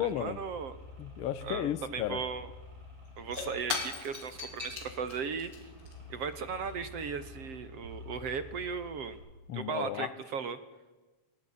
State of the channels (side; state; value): left; late; 6.9 ms